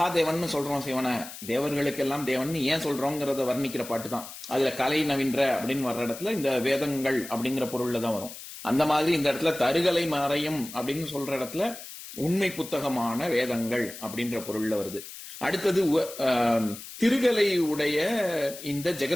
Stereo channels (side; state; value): left; noise; hiss, 13 dB below the sound